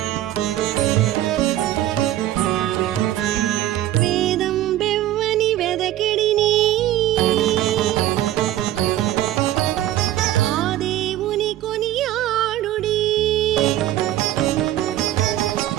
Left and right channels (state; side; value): quieter; left; 13.5 dB